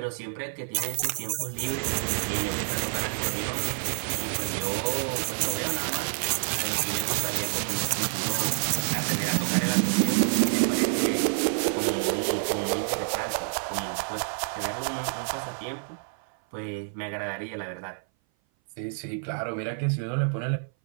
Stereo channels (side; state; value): left; silent; 57 dB below the other